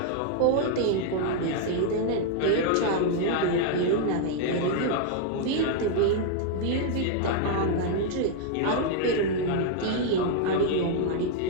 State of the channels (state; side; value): different; both; correlation 0.00